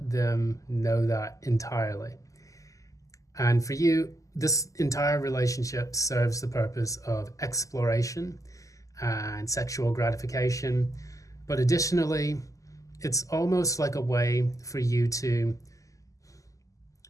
them know that entirely. And for you, this entire relationship serves the purpose of exploration and sexual gratification. But additionally, it's almost like a way for you to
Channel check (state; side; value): late; right; 0.16 ms